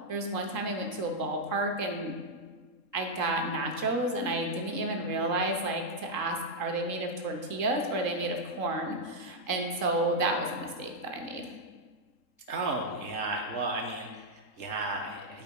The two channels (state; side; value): late; right; 3.7 ms